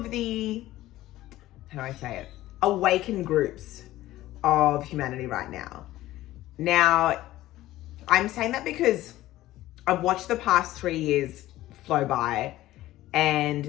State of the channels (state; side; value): quieter; right; 15.6 dB